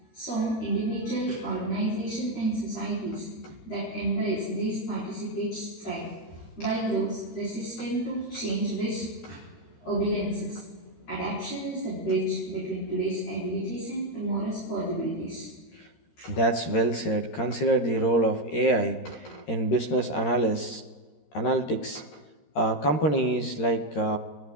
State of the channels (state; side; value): late; right; 13 ms